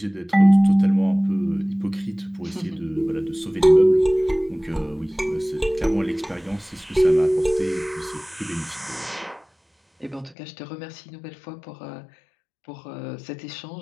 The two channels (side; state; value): right; drops out; at 10.4 s